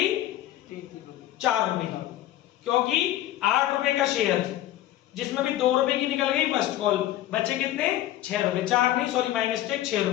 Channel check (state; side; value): quieter; right; 13.7 dB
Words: 4 रुपए की, क्योंकि 8 रुपए का शेयर जिसमें भी 2 रुपए की निकल गई फर्स्ट कॉल, बचे कितने 6 रुपए, 4 नहीं सॉरी माय मिस्टेक, 6